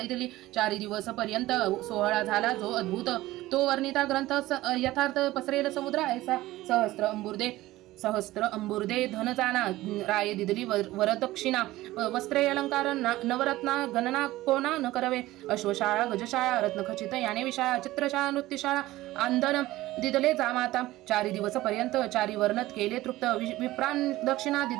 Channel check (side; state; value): left; quieter; 17.1 dB